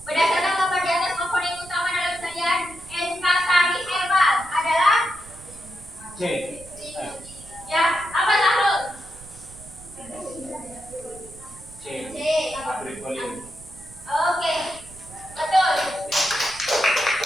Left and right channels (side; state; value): right; noise; rumble, 19 dB below the sound